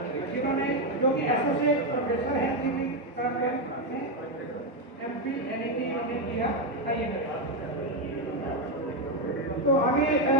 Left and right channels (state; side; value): normal; both; correlation 0.06